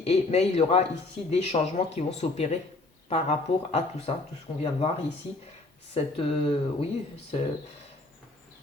mais il y aura ici des changements qui vont s'opérer par rapport à tout ça, tout ce qu'on vient de voir ici. Oui,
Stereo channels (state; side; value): quieter; right; 3.1 dB